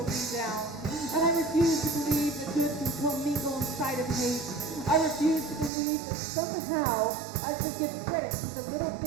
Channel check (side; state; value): left; drops out; at 5.7 s